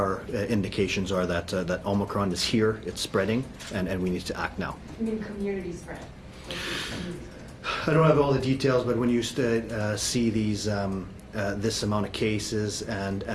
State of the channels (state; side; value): identical; both; correlation 1.00